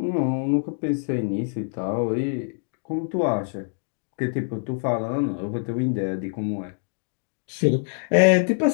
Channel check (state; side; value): silent; right; 62 dB below the other